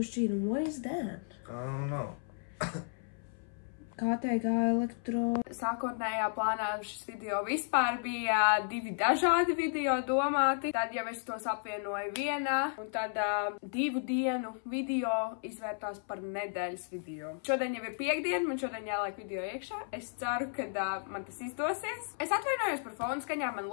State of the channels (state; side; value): silent; right; 55 dB below the other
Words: šķīrumu. What is that? I don't know. KTG elektro. Sākotnējā plānā šis video vispār bija 2 dažādi video domāti. Tad jau es tos apvienoju vienā, un tad 2 dienu video izvērtās par nedēļas video. Šodien jau ir piekdiena, man šodien jāliek video iekšā. Es ceru, ka man tas izdosies. Es atvainojos par fonu skaņām, man